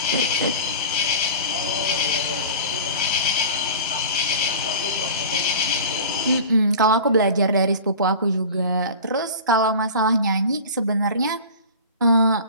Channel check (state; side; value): inverted; both; correlation -0.36